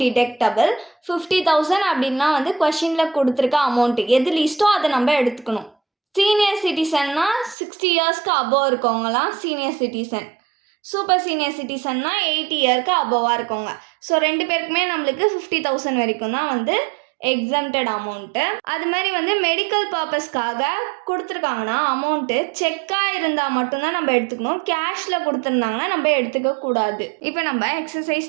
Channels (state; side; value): drops out; left; at 7.6 s